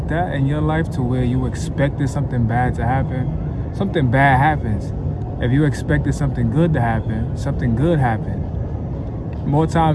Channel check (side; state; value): both; identical; correlation 1.00